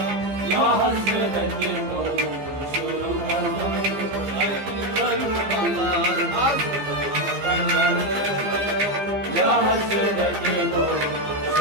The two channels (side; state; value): left; late; 15 ms